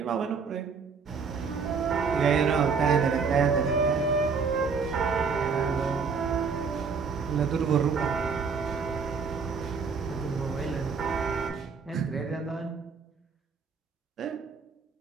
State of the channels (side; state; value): left; quieter; 5.4 dB